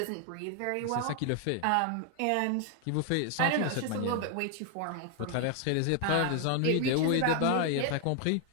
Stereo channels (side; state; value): both; different; correlation 0.00